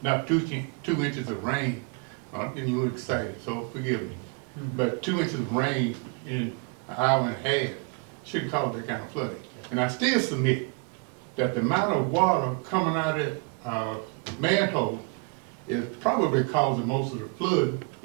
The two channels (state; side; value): quieter; left; 32.2 dB